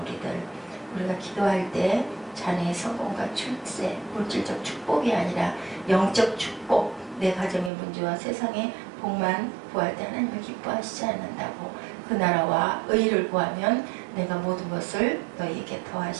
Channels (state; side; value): drops out; left; at 7.7 s